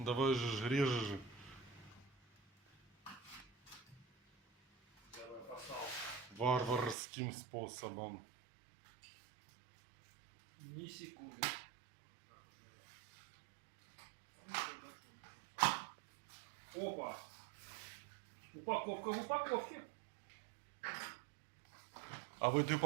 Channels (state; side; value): drops out; left; at 7.0 s